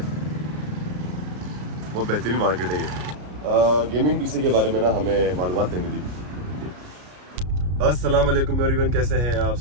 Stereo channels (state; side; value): late; left; 33 ms